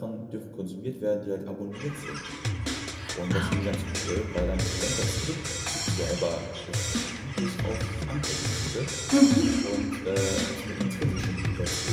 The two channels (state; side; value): identical; both; correlation 1.00